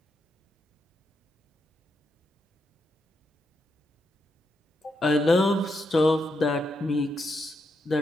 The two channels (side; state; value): both; normal; correlation 0.82